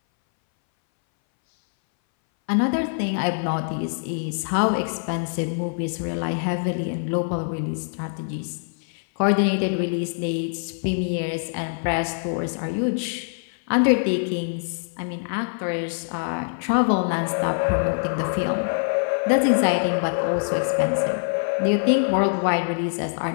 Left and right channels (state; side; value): silent; right; 60 dB below the other